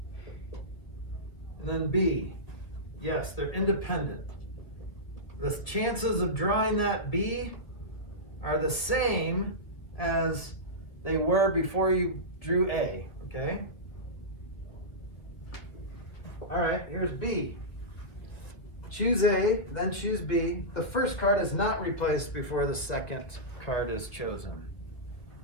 and then B. Yes, they're independent. The chances of drawing that B are the same as they were before you drew A, okay? All right, here's B. Choose A, then choose B. The first card is not replaced before the second card is chosen.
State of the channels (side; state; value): right; late; 2.0 ms